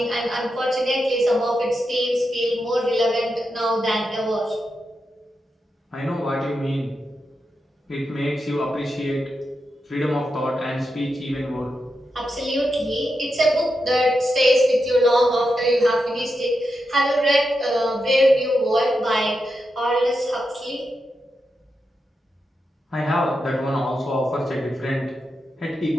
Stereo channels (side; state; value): both; normal; correlation 0.87